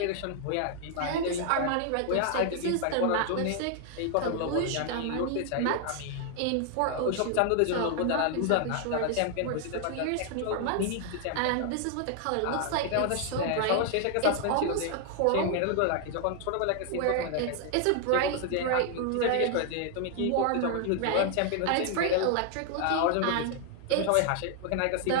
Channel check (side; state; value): both; different; correlation 0.00